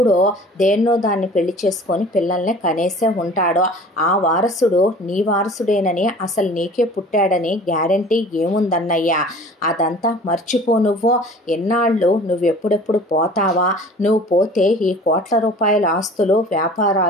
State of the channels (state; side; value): normal; both; correlation 0.45